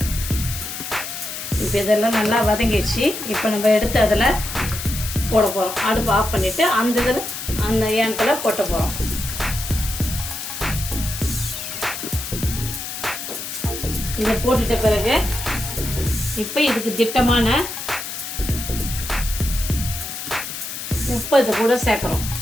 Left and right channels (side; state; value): left; noise; hiss, 7 dB below the sound